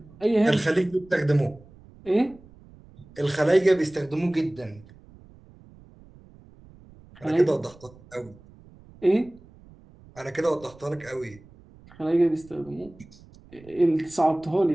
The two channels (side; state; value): right; noise; rumble, 24 dB below the sound